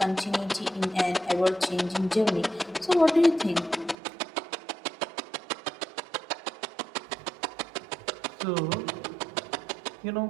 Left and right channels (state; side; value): drops out; left; at 4.0 s